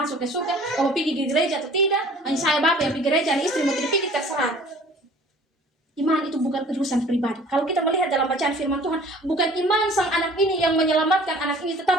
ke surga, kau mau pergi ke gereja atau tidak. Hanya saya bapak yang pergi gereja, istri mau tidak pergi, terserah. Iman itu bukan urusan pribadi. Kalau kita melihat dalam bacaan firman Tuhan, bukan iman sang anak ini yang menyelamatkan anak ini,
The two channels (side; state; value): both; normal; correlation 0.50